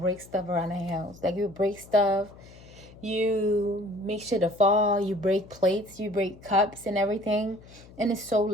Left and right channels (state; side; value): noise; left; hum, 22 dB below the sound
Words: stuff around the house. Like you break stuff, you make shit to fall, you break plates, you break cups and everything. And it's so